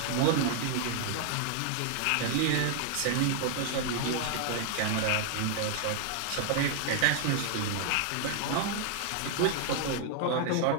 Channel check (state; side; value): different; both; correlation 0.00